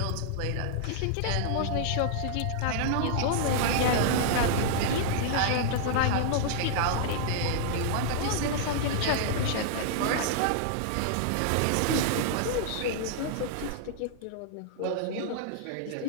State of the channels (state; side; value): different; both; correlation -0.01